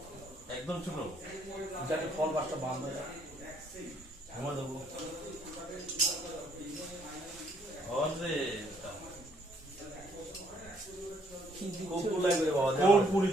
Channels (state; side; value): normal; both; correlation 0.67